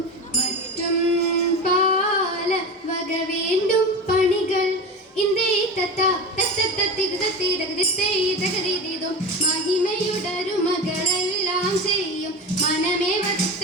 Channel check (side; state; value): both; normal; correlation 0.25